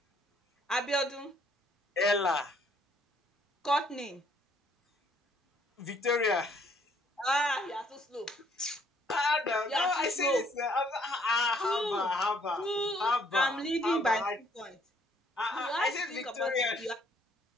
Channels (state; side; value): normal; both; correlation 0.65